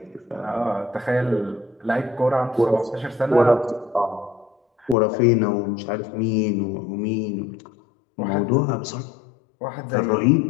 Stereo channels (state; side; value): drops out; right; at 5.0 s